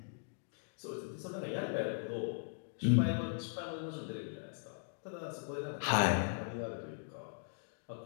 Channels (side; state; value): right; silent; digital silence